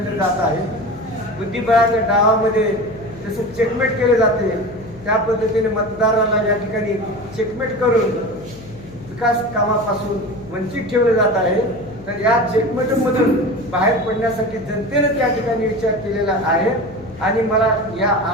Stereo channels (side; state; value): left; noise; hum, 19 dB below the sound